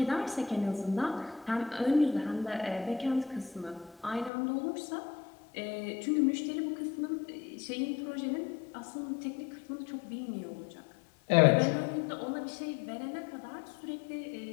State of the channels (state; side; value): drops out; right; at 4.3 s